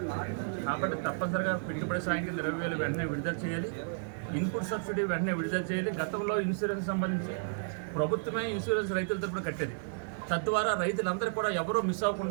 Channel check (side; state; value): left; silent; digital silence